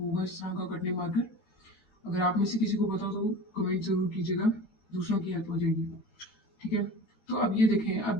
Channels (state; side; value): late; right; 13 ms